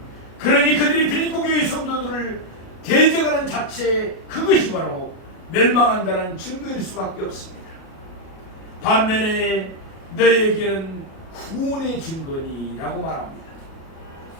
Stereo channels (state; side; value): late; right; 37 ms